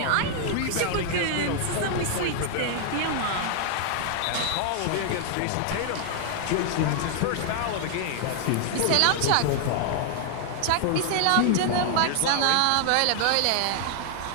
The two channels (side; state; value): both; different; correlation 0.00